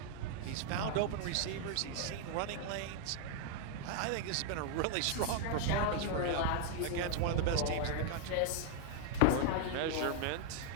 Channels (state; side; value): different; both; correlation 0.00